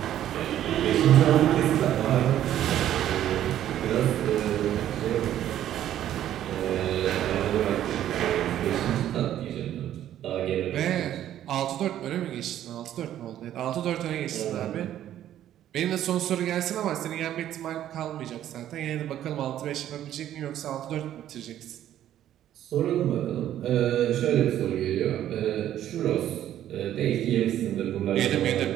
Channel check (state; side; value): quieter; left; 11.7 dB